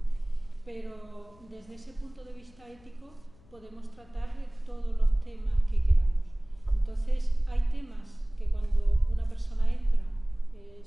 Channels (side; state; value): left; noise; hum, 27 dB below the sound